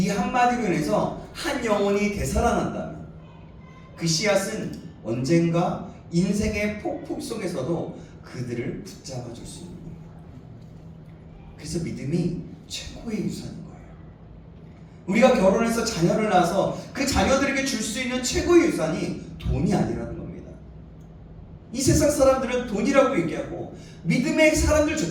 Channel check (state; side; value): identical; both; correlation 1.00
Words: 한마디로 인해서 한 영혼이 되살아난다면 그 씨앗은 언젠가 인생의 폭풍 속에서도 그들을 붙잡아 줄 수 있는 겁니다. 그래서 믿음이 최고의 유산인 거예요. 우리가 결혼해서 자녀를 낳아서 그 자녀들에게 줄 수 있는 최고의 유산이 돈이 아니라는 겁니다. 이 세상 사람들은 돈이라고 얘기하고 믿음의